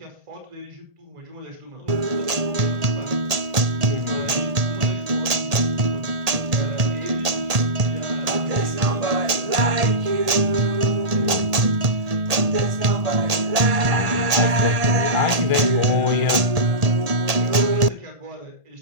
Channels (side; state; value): left; late; 1.8 ms